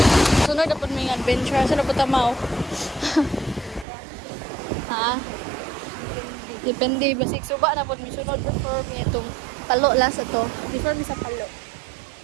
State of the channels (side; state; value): left; drops out; at 3.9 s